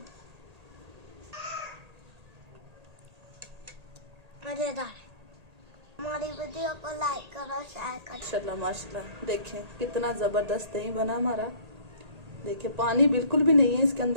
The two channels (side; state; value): left; late; 1.8 ms